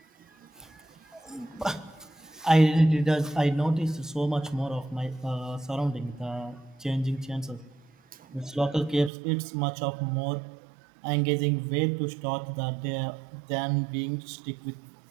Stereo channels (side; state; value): left; drops out; at 9.1 s